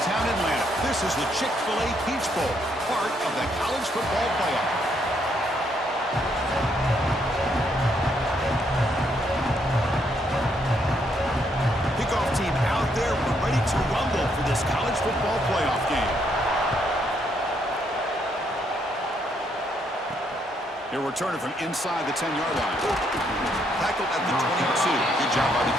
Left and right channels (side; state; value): both; normal; correlation 0.73